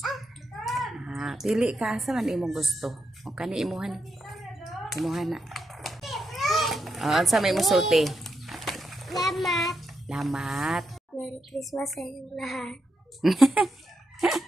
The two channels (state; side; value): normal; both; correlation 0.84